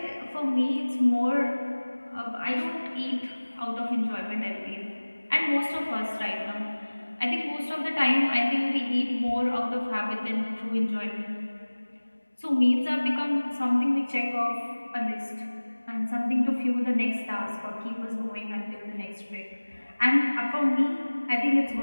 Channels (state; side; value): inverted; both; correlation -1.00